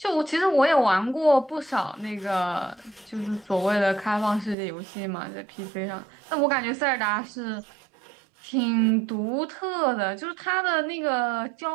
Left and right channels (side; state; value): left; drops out; at 4.5 s